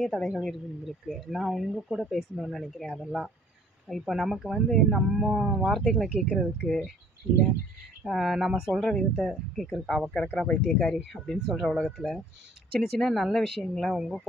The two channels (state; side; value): normal; both; correlation 0.55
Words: தடைகள் இருந்திருக்கு. நான் உங்கள் கூட பேசணும்னு நினைக்கிறேன். அதெல்லாம் இப்போ நமக்கு நம்ம வார்த்தைகளை கேட்குறதுக்கு, இல்லை நம்ம சொல்கிற விதத்தை கேட்குறதுக்கு, அவள் கிடக்குறா பைத்தியக்காரி அப்படின்னு சொல்கிற உலகத்தில் சின்ன சின்ன நல்ல விஷயங்களை உங்கள்